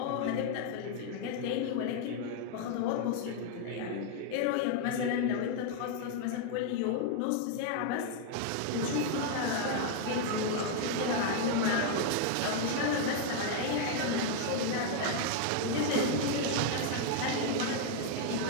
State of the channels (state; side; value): different; both; correlation 0.00